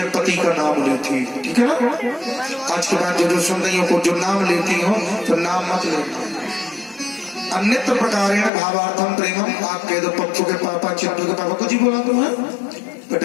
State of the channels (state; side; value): drops out; right; at 8.5 s